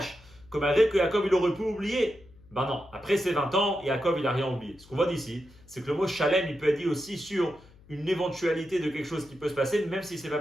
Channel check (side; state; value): left; noise; hum, 25 dB below the sound